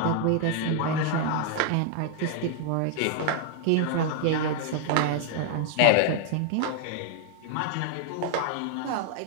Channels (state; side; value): different; both; correlation 0.00